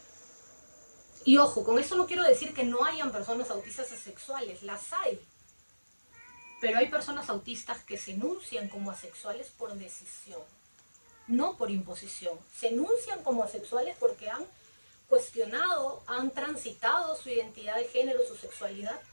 Y ojo, con eso no quiero decir que no hayan personas autistas asexuales, las hay. Pero hay personas autistas que se enuncian como asexuales por decisión, no por imposición. Se enuncian como asexuales porque han cuestionado, han transitado su identidad de género, su sexualidad,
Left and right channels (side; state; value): both; inverted; correlation -1.00